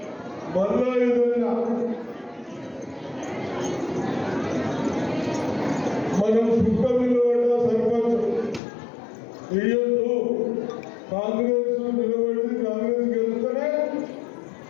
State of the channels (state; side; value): drops out; right; at 8.6 s